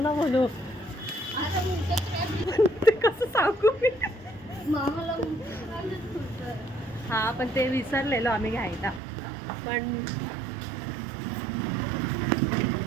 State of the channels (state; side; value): drops out; left; at 9.0 s